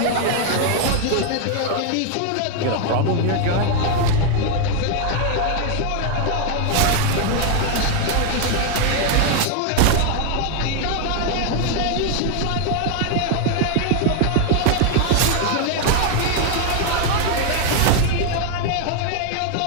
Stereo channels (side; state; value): both; different; correlation 0.01